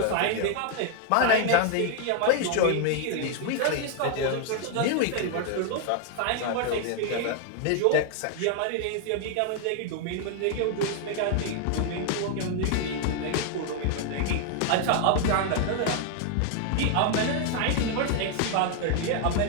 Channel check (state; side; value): different; both; correlation 0.00